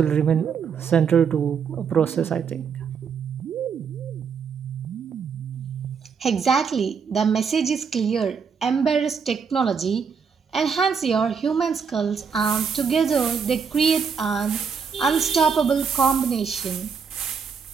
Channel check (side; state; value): left; quieter; 6.2 dB